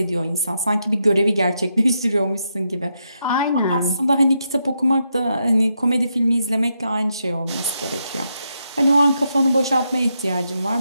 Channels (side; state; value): both; inverted; correlation -0.82